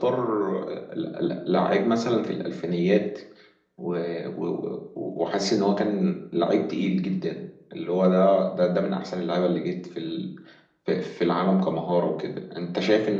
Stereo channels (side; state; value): both; identical; correlation 1.00